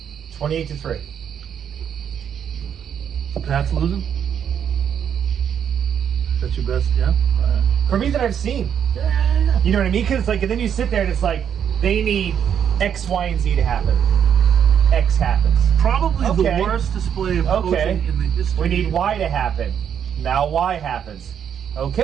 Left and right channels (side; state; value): left; quieter; 8.5 dB